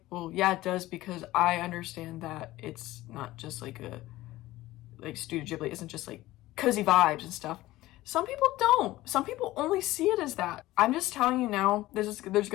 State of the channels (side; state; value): right; quieter; 17.1 dB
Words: well, yeah, it does, because I understand that it's not just like Studio Ghibli isn't just like cozy vibes and stuff. Some people don't. Some people only see it as that. I'm just telling you now, there's